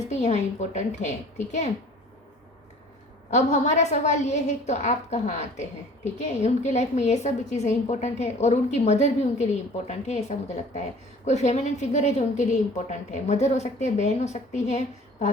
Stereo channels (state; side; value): normal; both; correlation 0.48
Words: भी यहाँ इम्पोर्टेंट है। ठीक है, अब हमारा सवाल ये है तो आप कहाँ आते हैं। ठीक है, उनकी लाइफ में ये सब चीज़ें इंपॉर्टेंट है और उनकी मदर भी उनके लिए इम्पोर्टेंट है, ऐसा मुझे लगता है। कोई फेमिनिन फिगर है जो उनके लिए इम्पोर्टेंट है, मदर हो सकती है, बहन हो सकती है,